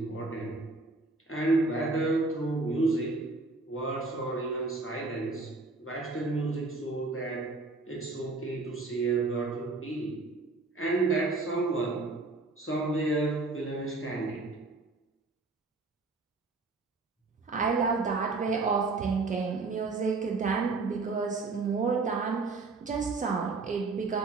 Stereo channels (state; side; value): quieter; left; 3.5 dB